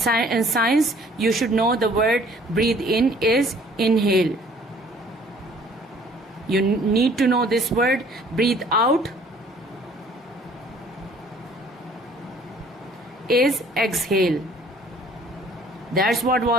you should know the word breathe in is inhale. You need to know this word. Breathe out is exhale. That's what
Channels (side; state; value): both; normal; correlation 0.56